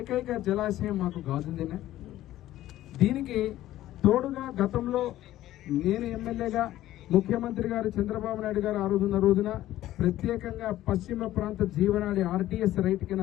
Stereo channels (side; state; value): right; quieter; 14.2 dB